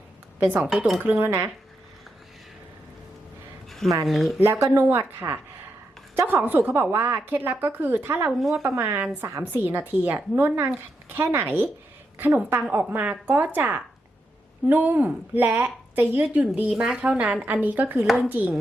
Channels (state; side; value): normal; both; correlation 0.84